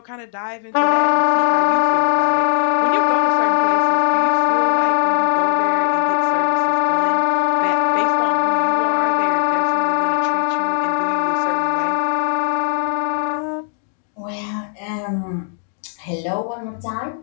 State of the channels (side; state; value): right; silent; digital silence